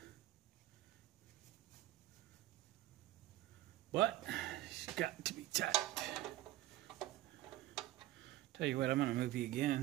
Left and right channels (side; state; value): left; quieter; 15.4 dB